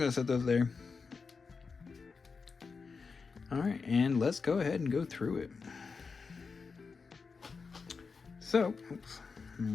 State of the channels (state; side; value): quieter; right; 4.9 dB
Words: to set those there. Alright, and let's go ahead and go through it. So, oops,